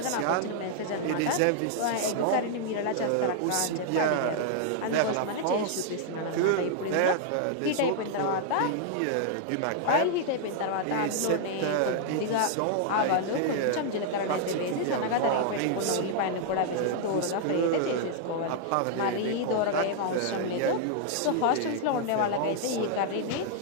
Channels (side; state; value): both; different; correlation -0.01